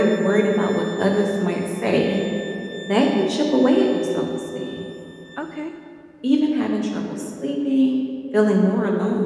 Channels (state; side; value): identical; both; correlation 1.00